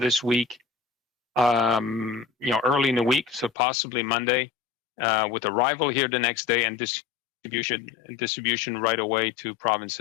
week, early in the week, so possibly Monday, with arrival here the next day and distribution right away to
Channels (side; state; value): right; drops out; at 3.5 s